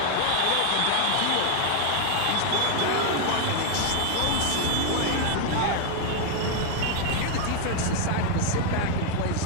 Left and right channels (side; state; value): both; different; correlation 0.00